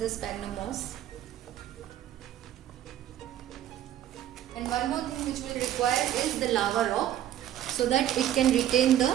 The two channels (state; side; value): quieter; left; 11.8 dB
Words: sphagnum moss. And one more thing which we'll require is the lava rock, so that it can retain the